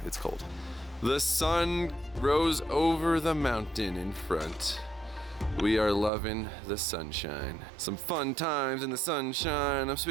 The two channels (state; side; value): drops out; left; at 6.1 s